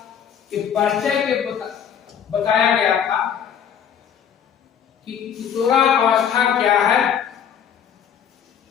के परिचय के बताया गया था कि किशोरावस्था क्या है।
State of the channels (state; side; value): quieter; right; 8.4 dB